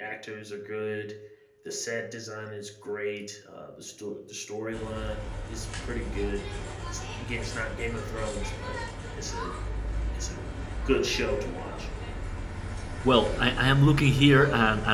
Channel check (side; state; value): both; identical; correlation 1.00